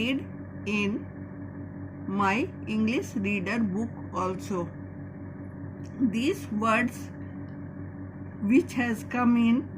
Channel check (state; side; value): identical; both; correlation 1.00